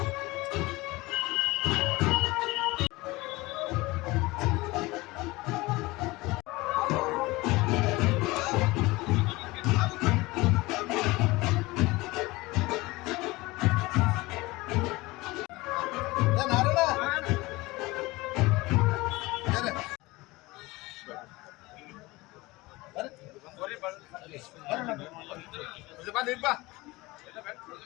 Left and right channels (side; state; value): right; quieter; 21.4 dB